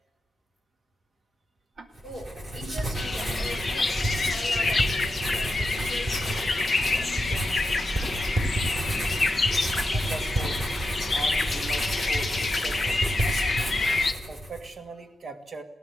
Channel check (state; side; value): normal; both; correlation 0.88